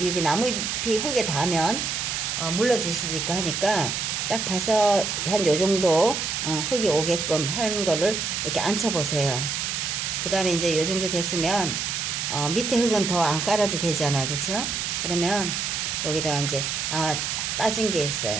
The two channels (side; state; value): right; noise; hiss, 2 dB below the sound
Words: 나무잎이 흙에 닿으면 물러질 수도 있고 하니까, 딱 봐서 한 요 정도 흙이 오게끔 하는 거를 이렇게 앉혀 보세요. 그 다음에 이제 요 정도 됐으면 밑에 흙은 더 안 깔아도 되잖아요, 그쵸? 그러면 여기다가 이제 빠진 게